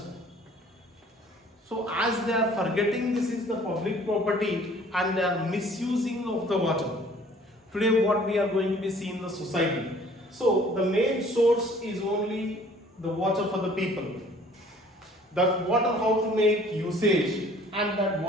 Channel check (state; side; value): normal; both; correlation 0.54